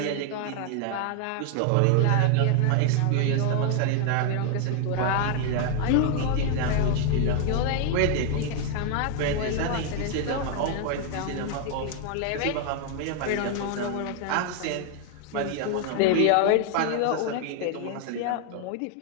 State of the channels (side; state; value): both; different; correlation 0.00